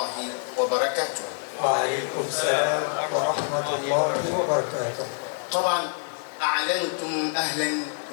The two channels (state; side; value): silent; right; digital silence